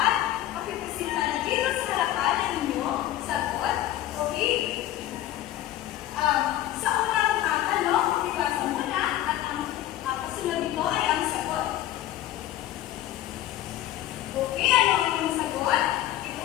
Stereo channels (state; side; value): quieter; right; 13.7 dB